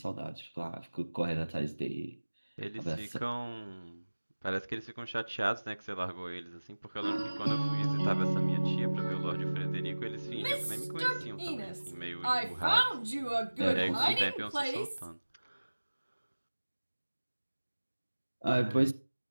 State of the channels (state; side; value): inverted; both; correlation -1.00